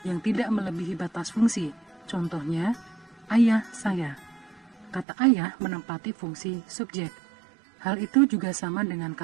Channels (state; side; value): drops out; left; at 5.1 s